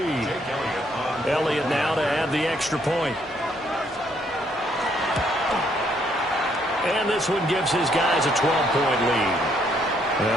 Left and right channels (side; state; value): both; normal; correlation 0.70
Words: Elliott now to add the extra point. And this one gives his guys a 12-point lead.